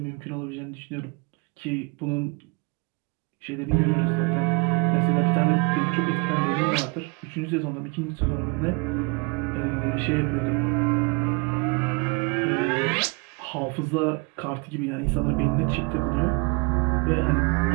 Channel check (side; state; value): left; quieter; 30.7 dB